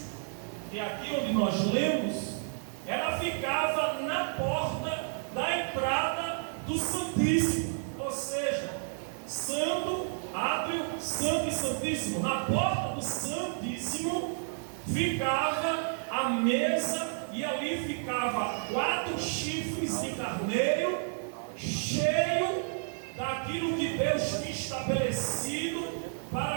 e aqui onde nós lemos, ela ficava na porta da entrada do Santíssimo, ou seja, santo, átrio, santo e santíssimo. Na porta do Santíssimo ficava a mesa, e ali ficava 4 chifres de carneiro cheio daquilo que Deus tinha estabelecido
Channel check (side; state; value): left; silent; digital silence